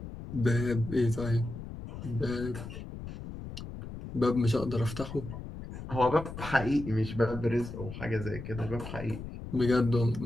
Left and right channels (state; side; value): noise; left; rumble, 10 dB below the sound